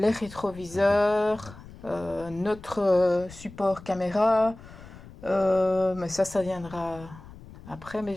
rétroviseurs, notre support caméra, mais ça viendra après, mais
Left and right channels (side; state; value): left; noise; rumble, 18 dB below the sound